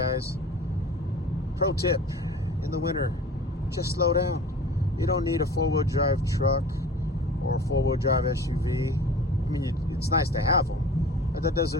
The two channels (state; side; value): normal; both; correlation 0.41